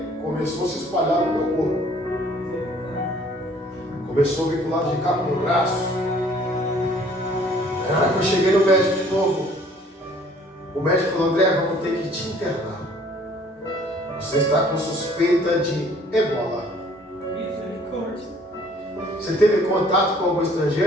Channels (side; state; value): both; normal; correlation 0.56